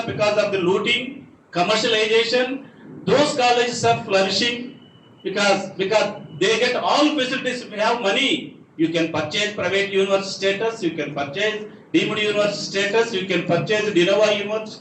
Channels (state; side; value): identical; both; correlation 1.00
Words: because of the looting, commercialization, those colleges are flourishing because they get all facilities. If you have money, you can purchase private university status, you can purchase deemed university status, you can purchase Nawab